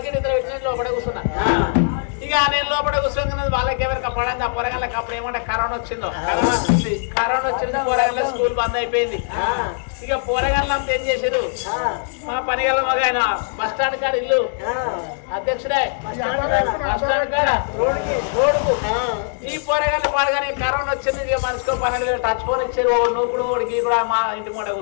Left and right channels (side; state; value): right; silent; digital silence